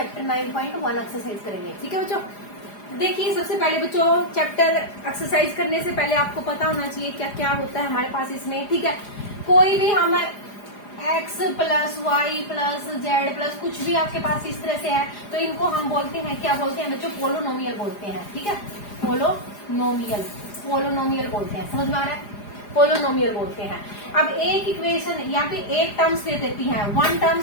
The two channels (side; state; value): right; late; 4.9 ms